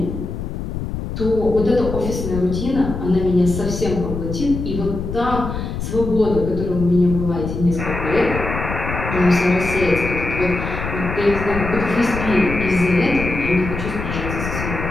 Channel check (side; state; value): left; noise; rumble, 5 dB below the sound